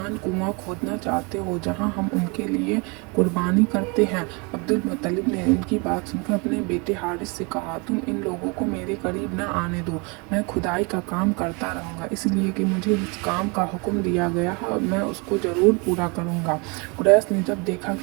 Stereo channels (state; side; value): quieter; left; 30.4 dB